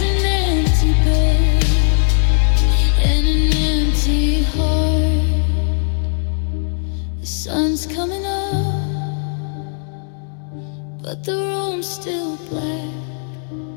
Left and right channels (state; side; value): silent; right; 62 dB below the other